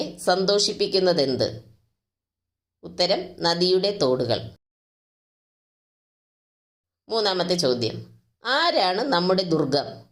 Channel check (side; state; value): both; identical; correlation 1.00